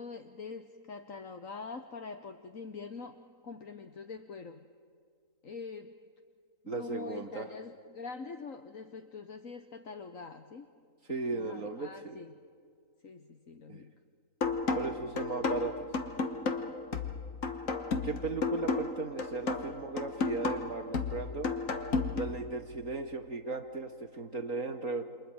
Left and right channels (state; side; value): late; right; 3.9 ms